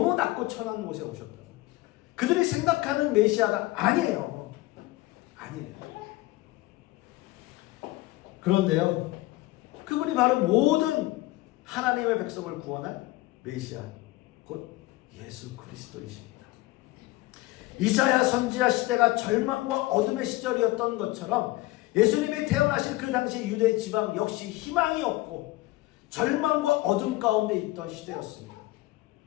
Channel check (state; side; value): quieter; right; 19.0 dB